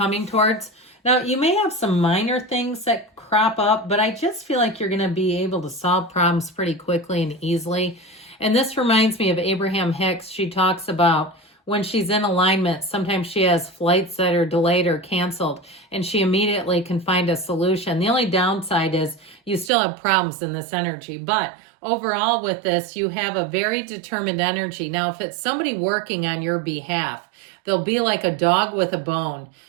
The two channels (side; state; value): left; drops out; at 19.7 s